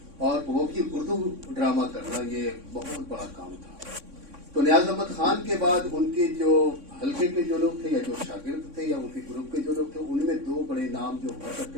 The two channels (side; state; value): left; late; 3.6 ms